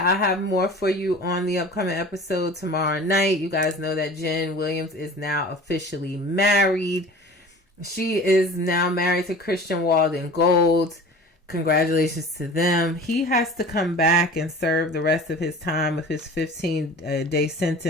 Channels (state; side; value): normal; both; correlation 0.41